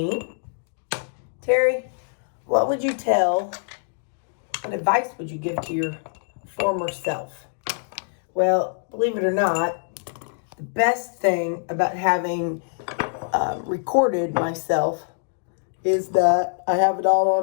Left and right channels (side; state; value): right; silent; digital silence